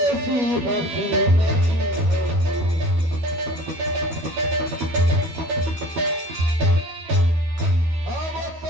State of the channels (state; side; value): late; left; 12 ms